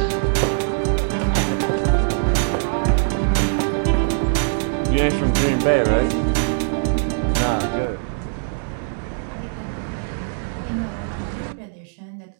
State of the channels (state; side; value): silent; left; digital silence